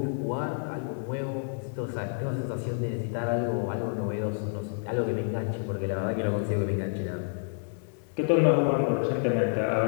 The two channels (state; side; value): silent; right; digital silence